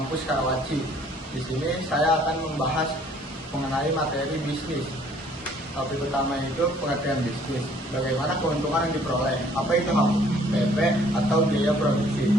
Karawaci. Di sini saya akan membahas mengenai materi bisnis. Topik utama itu pengertian bisnis. Bagaimana keuntungan yang diperoleh? Apa itu HPP atau biaya produksi?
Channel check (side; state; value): both; normal; correlation 0.59